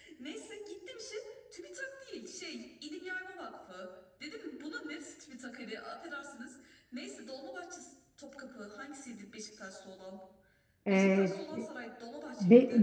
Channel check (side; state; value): both; identical; correlation 1.00